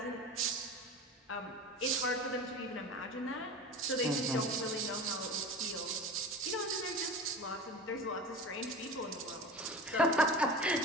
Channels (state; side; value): normal; both; correlation 0.33